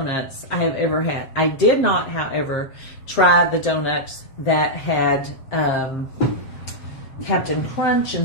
I have ever had. I did not, however, try the donuts that had Captain Crunch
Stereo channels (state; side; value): late; right; 7.5 ms